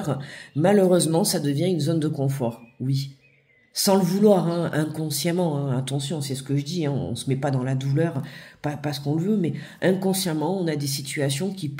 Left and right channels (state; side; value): identical; both; correlation 1.00